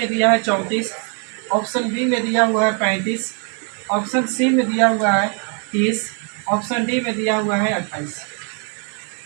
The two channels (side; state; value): left; quieter; 37.9 dB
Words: दिया है 34, ऑप्शन बी में दिया हुआ है 35, ऑप्शन सी में दिया हुआ है 30, ऑप्शन डी में दिया हुआ है 28।